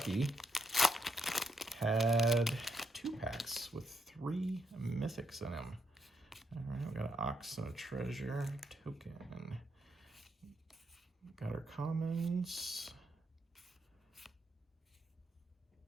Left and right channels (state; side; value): normal; both; correlation 0.78